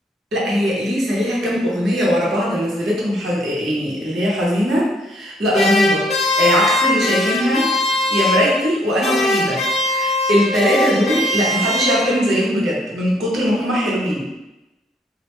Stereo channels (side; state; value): both; normal; correlation 0.65